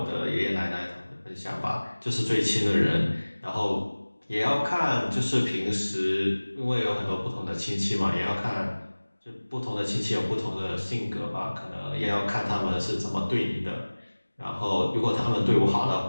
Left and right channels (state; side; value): inverted; both; correlation -1.00